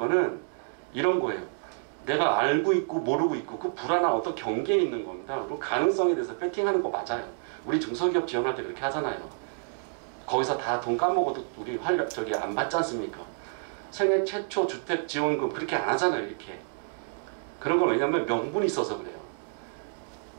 이런 거예요. 내가 알고 있고 모르고 있고 그 불안한 어떤 경계에 있는 겁니다. 그리고 가능성에 대해서 배팅하는 거 맞아요. 우리 중소기업 지원할 때 그렇게 하잖아요. 거기서 다 돈 까먹어도 우리 저기 안 받지 않습니까? 생애 최초 주택 지원금 그렇게 안 하잖아요. 이렇게. 그런 건 왜냐면 명분이 있어서 그래요.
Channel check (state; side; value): silent; left; digital silence